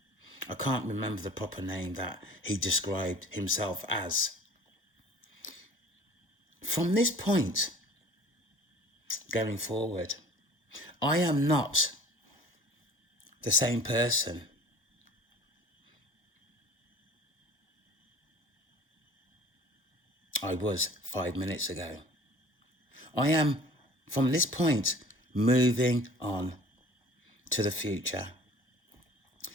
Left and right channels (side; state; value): both; normal; correlation 0.47